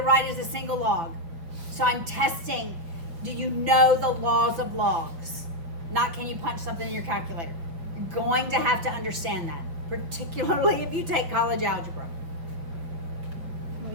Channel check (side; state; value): left; late; 6.0 ms